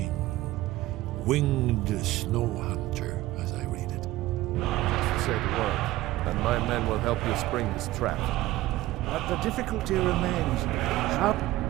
winged snow hunter, as I read it. Just say the word, and my men will help you spring this trap. But the difficulty remains. How...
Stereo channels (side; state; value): left; quieter; 16.8 dB